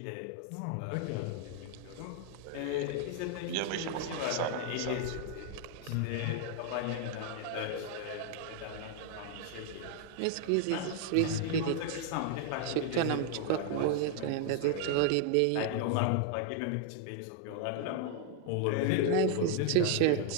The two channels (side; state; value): both; different; correlation 0.00